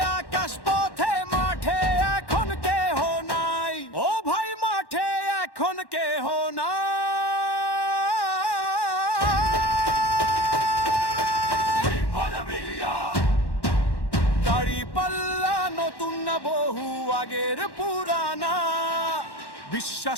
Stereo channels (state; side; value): late; right; 1.1 ms